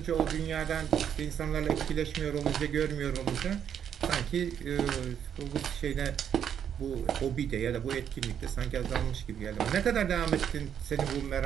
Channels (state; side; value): quieter; left; 8.7 dB